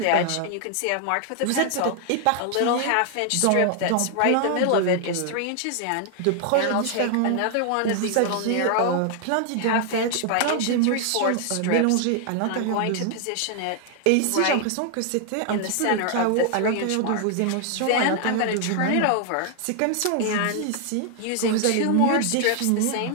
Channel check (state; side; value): different; both; correlation 0.00